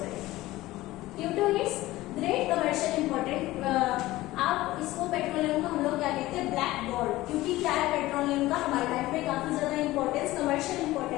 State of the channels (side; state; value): right; quieter; 17.5 dB